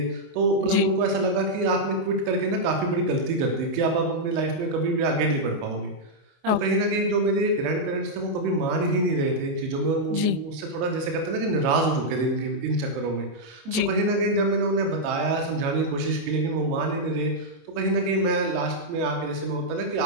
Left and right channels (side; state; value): left; late; 23 ms